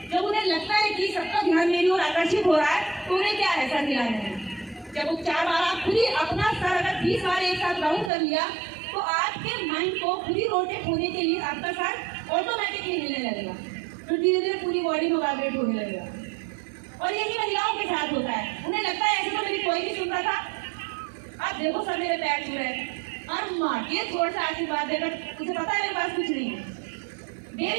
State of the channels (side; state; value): left; drops out; at 8.1 s